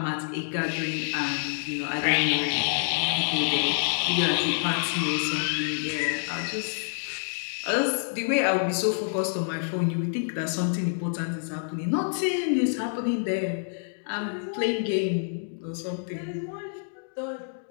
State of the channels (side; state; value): right; silent; digital silence